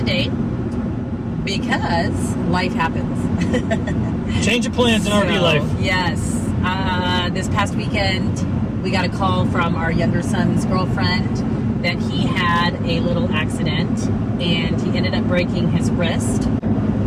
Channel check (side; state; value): both; identical; correlation 1.00